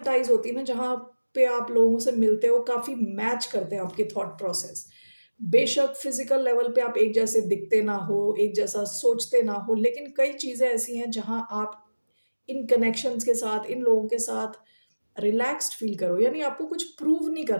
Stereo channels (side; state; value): both; inverted; correlation -1.00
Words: होती है ना, जहाँ पे आप लोगों से मिलते हो, काफ़ी मैच करते हैं आपके थॉट प्रोसेस। बेशक फिजिकल लेवल पे आप एक जैसे दिखते ना हो, एक जैसा सोचते ना हो, लेकिन कई चीज़ें ऐसी हैं जहाँ आप इन कनेक्शंस के साथ, इन लोगों के साथ रिलैक्स्ड फील करो। यानी आपको कुछ प्रूव नहीं